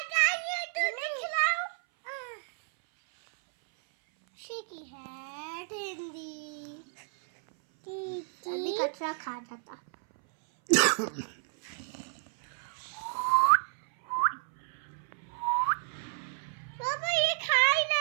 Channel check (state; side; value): silent; left; 57 dB below the other